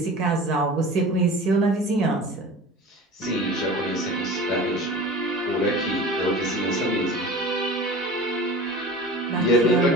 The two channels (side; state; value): both; normal; correlation 0.37